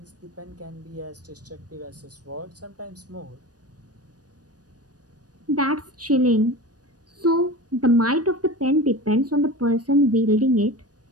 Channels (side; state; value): left; late; 0.68 ms